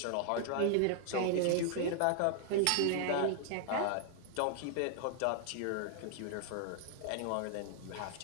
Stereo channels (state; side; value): different; both; correlation 0.00